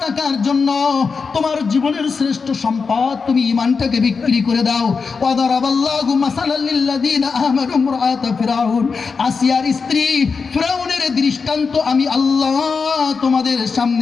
টাকার জন্য তোমার জীবনের শ্রেষ্ঠ সম্পদ তুমি ঈমানটাকে বিক্রি করে দাও। ওয়াদারাবাল্লাহু মাসালাল লিল্লাযীনা আমানু ইমরাআতা ফিরআউন। আসিয়ার স্ত্রী ফিরআউনের দৃষ্টান্ত আমি আল্লাহ তোমাদের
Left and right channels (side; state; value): right; quieter; 5.0 dB